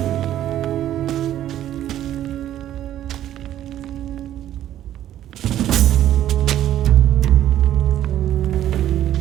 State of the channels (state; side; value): quieter; left; 12.1 dB